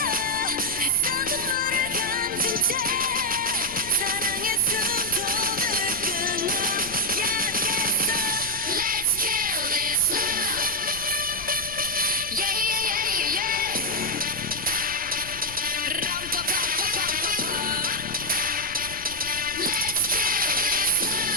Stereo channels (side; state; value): left; noise; rumble, 16 dB below the sound